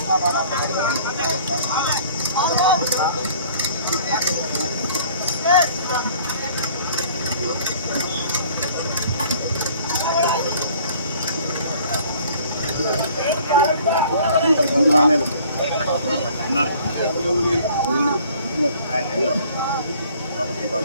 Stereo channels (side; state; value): both; inverted; correlation -0.53